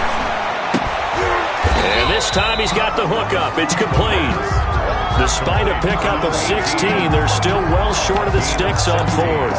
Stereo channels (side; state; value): both; identical; correlation 1.00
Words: And this time he's got the hook up. It's complete. Despite a pickup of 16, they're still well short of the sticks on